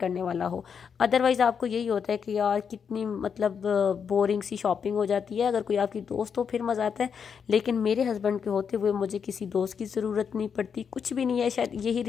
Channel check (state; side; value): quieter; right; 6.8 dB